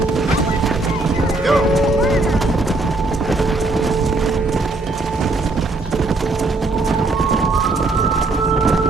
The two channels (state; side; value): quieter; left; 3.2 dB